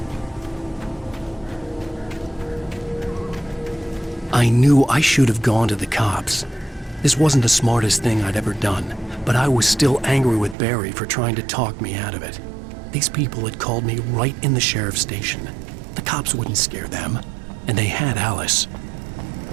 I knew I should have gone to the cops. This wasn't the smartest thing I'd ever done, but I was still angry with Barry for trying to talk me out of it. These people had called me right in the sheriff's station. The cops wouldn't scare them, and they had Alice.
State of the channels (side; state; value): left; drops out; at 10.6 s